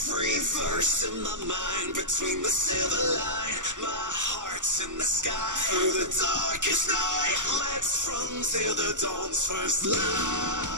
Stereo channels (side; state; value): left; late; 0.86 ms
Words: Between the silver line, my heart's in the sky. Through the darkest night, let's run till the dawn's first light.